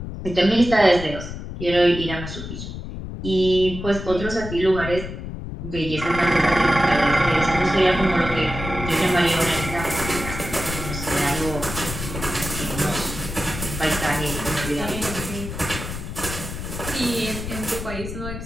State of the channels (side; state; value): left; noise; rumble, 8 dB below the sound